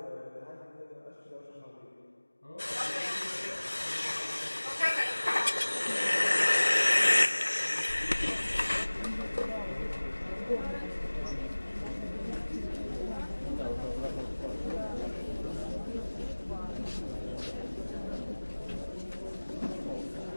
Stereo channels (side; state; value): both; inverted; correlation -1.00